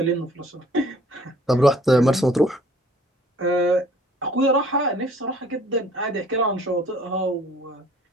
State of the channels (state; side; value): normal; both; correlation 0.56